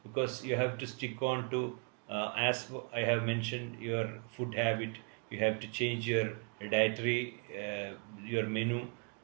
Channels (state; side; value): quieter; left; 38.1 dB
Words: because you have to stick on to, as I have mentioned, your food habit. You have to change your dietary, your menu.